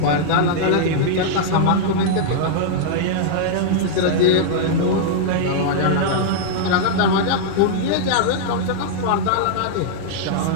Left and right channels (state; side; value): different; both; correlation -0.01